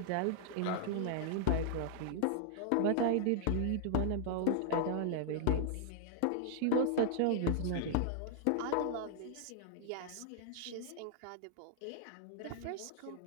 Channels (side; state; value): both; different; correlation -0.01